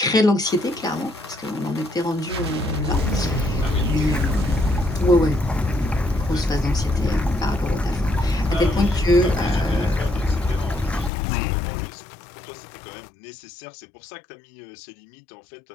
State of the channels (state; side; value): drops out; right; at 11.1 s